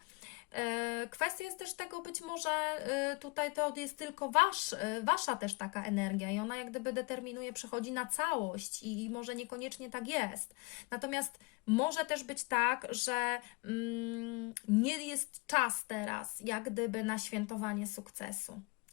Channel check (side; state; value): right; quieter; 28.2 dB